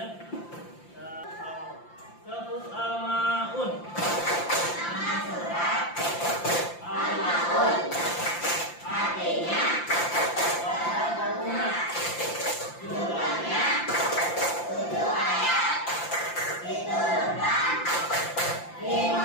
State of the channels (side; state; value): right; late; 5.8 ms